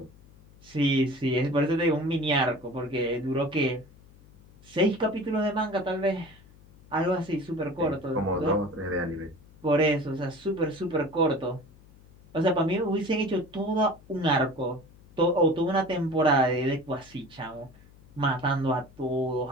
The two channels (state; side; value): noise; left; hum, 24 dB below the sound